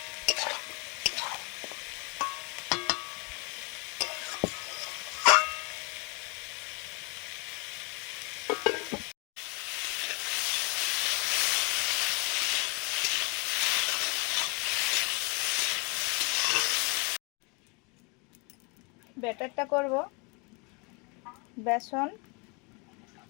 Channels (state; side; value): quieter; right; 31.7 dB